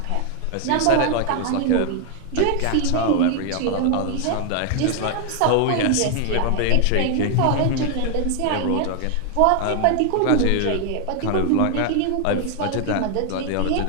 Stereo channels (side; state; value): both; different; correlation 0.00